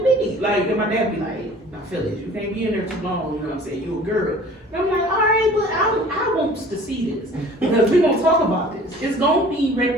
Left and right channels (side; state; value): both; normal; correlation 0.48